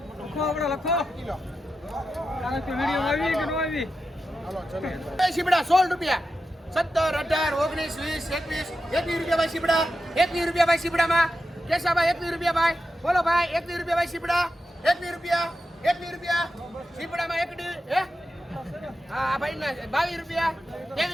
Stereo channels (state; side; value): normal; both; correlation 0.89